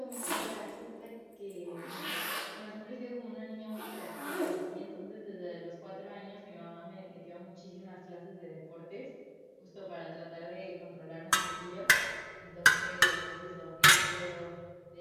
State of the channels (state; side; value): identical; both; correlation 1.00